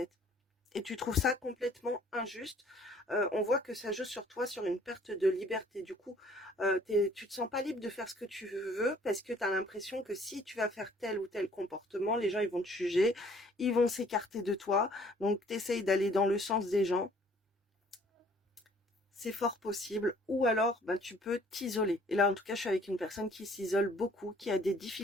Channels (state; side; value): normal; both; correlation 0.57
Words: et tu trouves ça complètement injuste. On voit que ça joue sur toi, sur une perte de liberté. Du coup, tu te sens pas libre de faire ce que tu veux parce que tu as l'impression que si tu vas faire tel ou tel comportement, les gens ils vont te juger, ils vont s'écarter de toi. Donc tu essayes d'aller dans le sens des gens. C'est fort possible. Ou alors, ben, tu peux t'isoler. Et là, en tout cas, je suis avec une personne qui s'isole beaucoup, qui a des